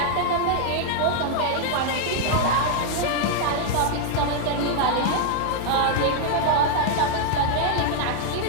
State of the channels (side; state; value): both; different; correlation 0.00